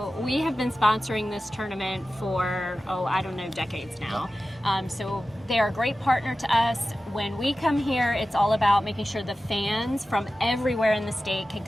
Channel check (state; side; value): normal; both; correlation 0.94